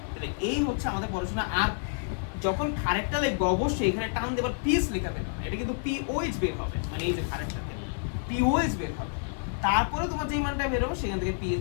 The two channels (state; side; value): silent; right; digital silence